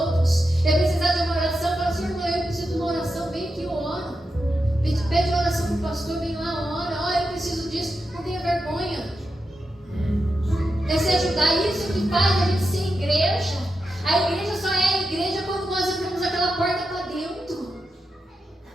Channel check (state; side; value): normal; both; correlation 0.88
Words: É precisar de uma oração, fala assim: irmão, eu preciso de uma oração, vem aqui, eu oro. Pede oração para o pastor, vem lá, ora. Eu preciso disso, não tenha vergonha. É se ajudar, isso que faz a gente ser igreja. A igreja só é a igreja quando nós entramos aquela porta para dentro.